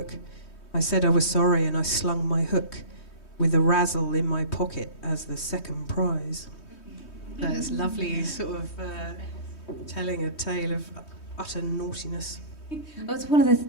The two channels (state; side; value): late; right; 3.2 ms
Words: I said I was sorry and I slung my hook with a Razzle in my pocket as the second prize. It's lovely, sort of telling a tale of utter naughtiness. Well, it's one of the